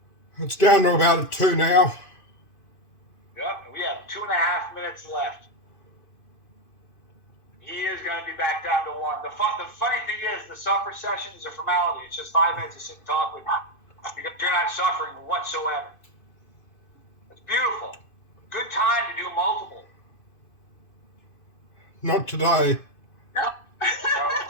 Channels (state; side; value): late; right; 2.5 ms